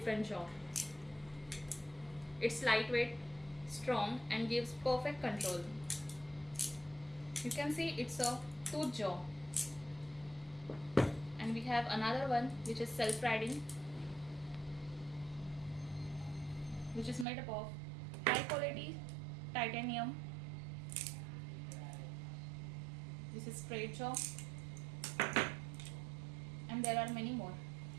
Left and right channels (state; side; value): drops out; left; at 17.2 s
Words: jaw. It's lightweight, strong and gives perfect control. You can see it's a tooth jaw. And we have another one which is self-riding, which is made up of high quality titanium. This is straight jaw, and there are many more.